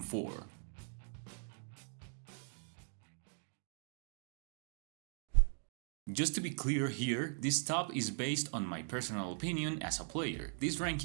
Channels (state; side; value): silent; left; 51 dB below the other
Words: Just to be clear here, this top is based on my personal opinion as a player. This